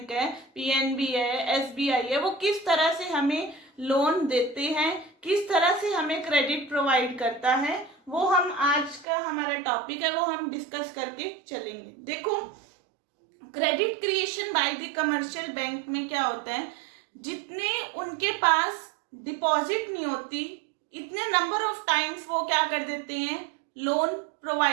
है, पीएनबी है, एसबीआई है, वो किस तरह से हमें लोन देते हैं, किस तरह से हमें क्रेडिट प्रोवाइड करता है, वो हम आज का हमारा टॉपिक है वो हम डिस्कस करके चलेंगे. देखो, credit creation by the commercial bank में क्या होता है, जितने उनके पास डिपॉजिट नहीं होती इतने नंबर ऑफ टाइम्स वो क्या कर देते हैं, लोन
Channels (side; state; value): left; drops out; at 9.1 s